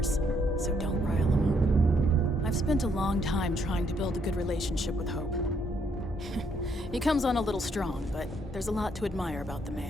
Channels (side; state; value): both; normal; correlation 0.71